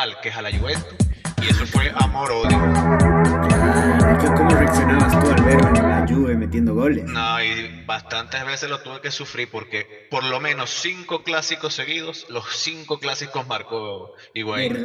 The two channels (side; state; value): both; identical; correlation 1.00